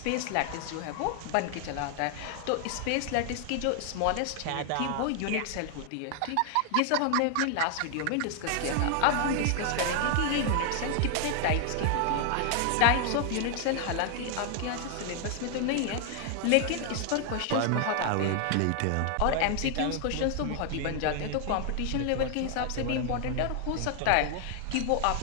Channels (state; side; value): different; both; correlation 0.00